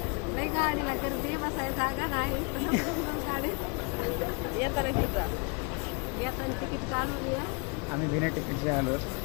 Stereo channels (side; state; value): right; quieter; 33.5 dB